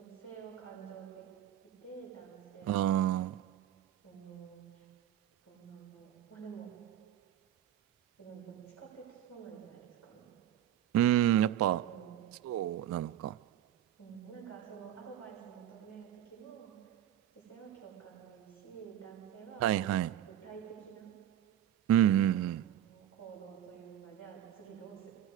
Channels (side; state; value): left; quieter; 11.4 dB